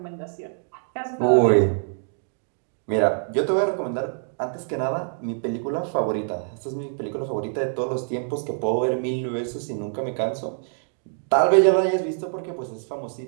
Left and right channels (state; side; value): silent; left; 62 dB below the other